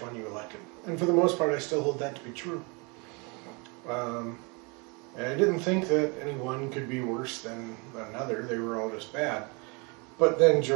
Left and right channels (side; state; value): left; quieter; 30.7 dB